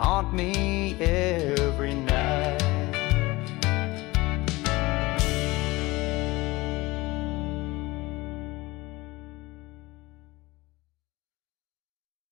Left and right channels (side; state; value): right; quieter; 21.3 dB